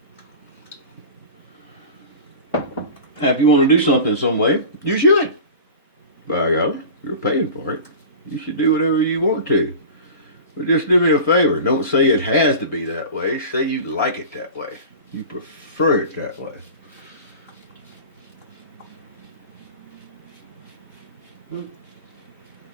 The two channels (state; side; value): inverted; both; correlation -0.35